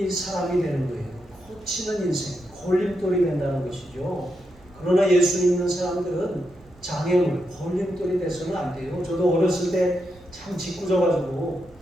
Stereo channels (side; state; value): right; noise; hum, 26 dB below the sound